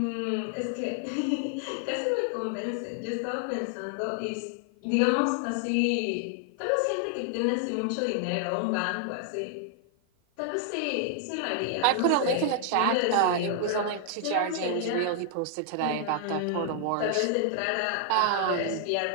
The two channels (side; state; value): both; different; correlation 0.00